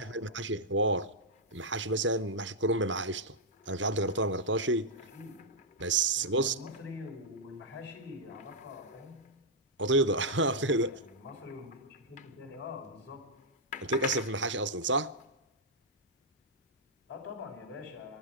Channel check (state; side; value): normal; both; correlation -0.07